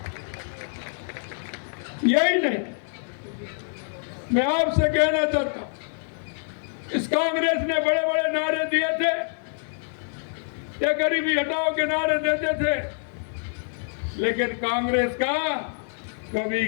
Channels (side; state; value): right; silent; 61 dB below the other